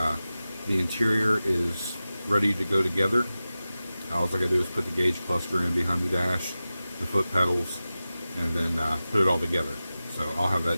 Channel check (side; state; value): both; inverted; correlation -0.95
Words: The interior is ready to go together. All I gotta do is put the gauge cluster in behind the dash, the foot pedals, and then put it all together. So I'll have